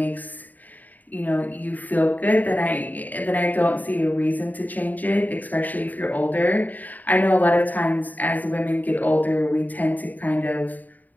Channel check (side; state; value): right; late; 0.082 ms